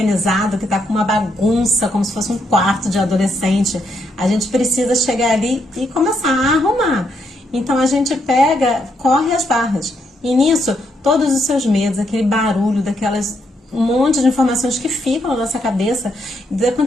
que está com uma bagunça, como se fosse um quarto de adolescente, a gente precisa chegar ali e começar a arrumar. Então a gente corre as barras. E nisso, todos os seus medos, aquele barulho, um monte de informações que ficam na nossa cabeça, da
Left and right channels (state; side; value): normal; both; correlation 0.77